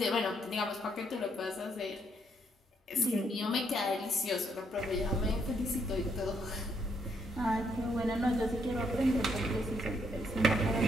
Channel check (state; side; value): normal; both; correlation 0.73